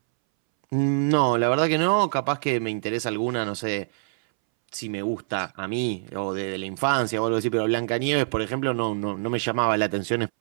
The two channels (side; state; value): left; silent; 62 dB below the other